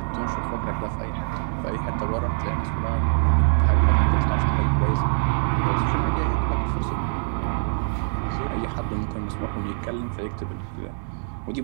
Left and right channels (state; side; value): silent; left; 62 dB below the other